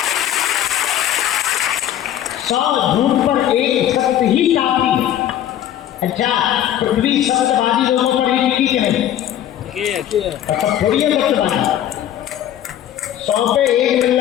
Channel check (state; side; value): quieter; right; 11.3 dB